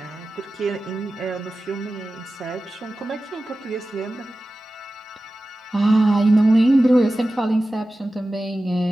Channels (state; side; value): normal; both; correlation 0.95